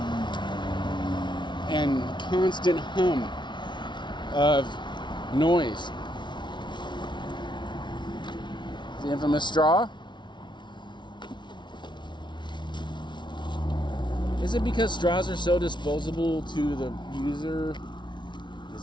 and constant hum of noise. The infamous straw. Is it because straws are so disposable to the user? Is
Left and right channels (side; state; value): right; late; 0.23 ms